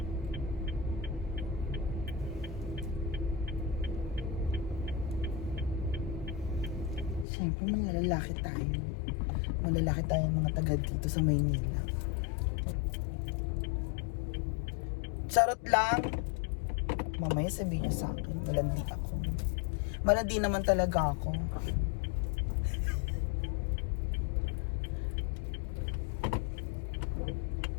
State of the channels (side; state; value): right; drops out; at 7.2 s